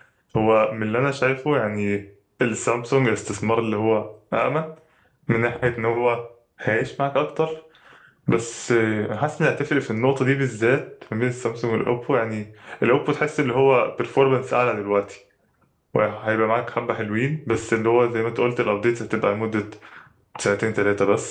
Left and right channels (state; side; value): identical; both; correlation 1.00